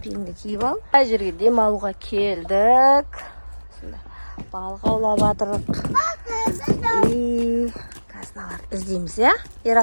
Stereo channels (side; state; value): both; inverted; correlation -1.00